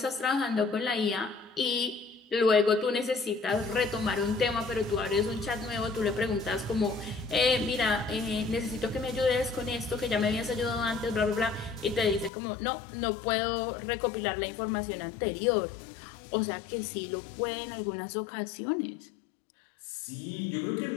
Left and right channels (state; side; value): drops out; right; at 12.3 s